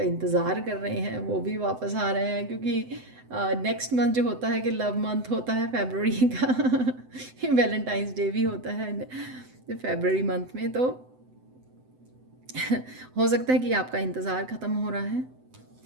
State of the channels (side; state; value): left; late; 7.9 ms